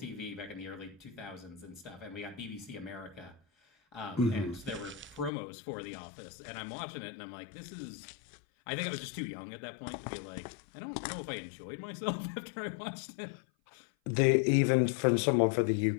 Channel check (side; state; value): right; drops out; at 5.3 s